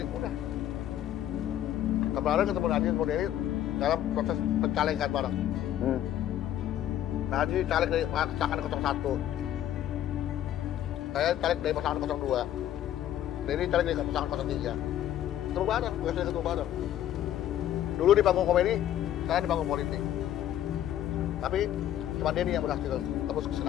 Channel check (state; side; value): quieter; right; 11.8 dB